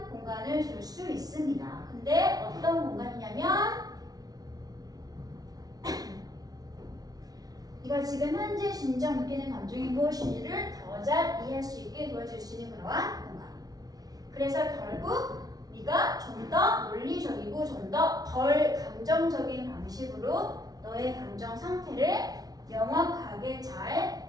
공간을 줄 수 있습니다. 근데 어떤 공간이냐면 네가 지금 현재 진정 느끼는 감정이 무엇인지를 더 잘 이해할 수 있게 도와줄 수 있는 그러한 공간. 그래서 결국 네가 좀 더 논리적이고 좀 더 덜 감정적인 방식으로 너의 감정 상태를 명확하게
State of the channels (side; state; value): left; late; 0.18 ms